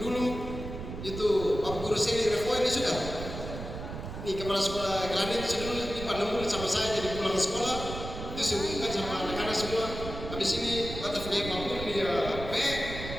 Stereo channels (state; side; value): noise; right; rumble, 8 dB below the sound